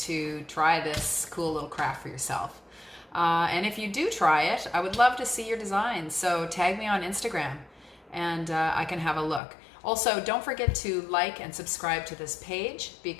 try this cool little craft for yourself. And if you do try it, I would love to see your designs. So tag me on Instagram, and I can have a look. Also, don't forget to like and subscribe to this page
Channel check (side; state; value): right; drops out; at 9.4 s